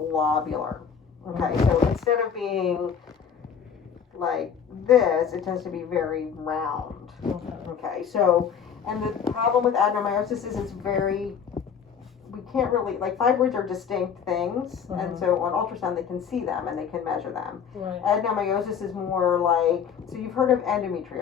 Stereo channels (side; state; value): right; quieter; 7.3 dB